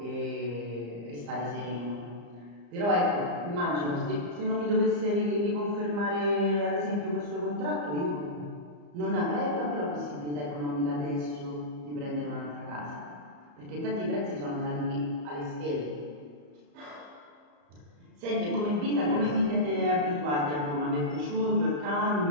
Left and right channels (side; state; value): left; late; 34 ms